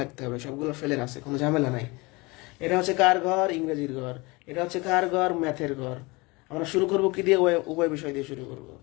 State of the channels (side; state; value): right; quieter; 24.9 dB